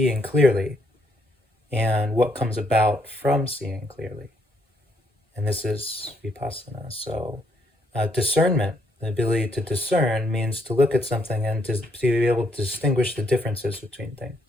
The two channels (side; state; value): both; normal; correlation 0.72